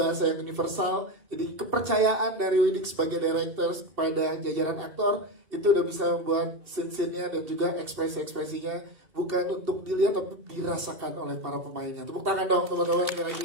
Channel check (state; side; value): late; left; 2.7 ms